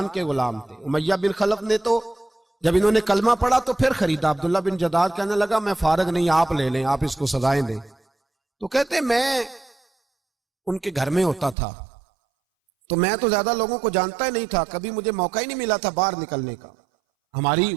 کے غلام تھے. امیہ بن خلف نے تو جب انہوں نے کلمہ پڑھا تو پھر خریدا. عبداللہ بن جدان کہنے لگا میں فارغ نہیں, آپ لے لیں, آپ اس کو سزائیں دیں. تو کہتے میں ان کے گھر میں ہوتا تھا تو میں تو زیادہ لوگوں کو جانتا ہی نہیں تھا, کبھی مجھے موقع ہی نہیں ملا تھا باہر نکلنے کا. ہماری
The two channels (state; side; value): drops out; left; at 11.6 s